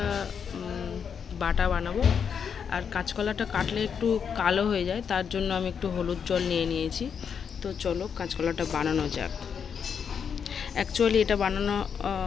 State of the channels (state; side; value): quieter; right; 7.0 dB